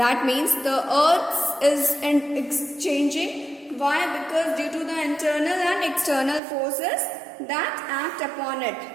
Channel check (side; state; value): left; drops out; at 6.4 s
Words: means the earth is changing. Why? Because due to the internal and external forces that act upon it.